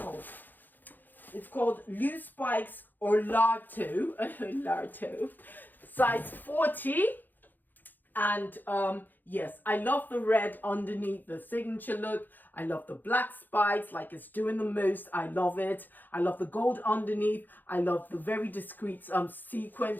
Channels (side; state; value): right; late; 0.087 ms